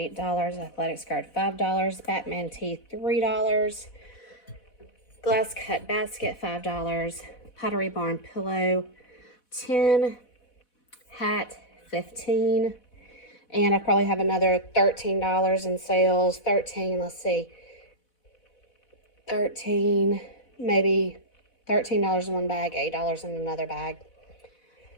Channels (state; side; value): late; right; 4.0 ms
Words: Athletic skirt, $5. Batman tee, $3. Glass cut basket, $5. Pottery Barn pillow, $10. Hat, $15. And I probably have another $13 in sales. 13, let's see. 13, maybe $13 in one bag, $8 in another bag.